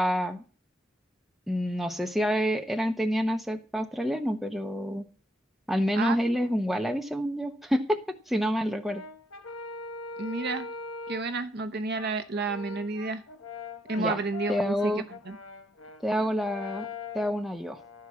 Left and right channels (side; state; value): both; normal; correlation 0.78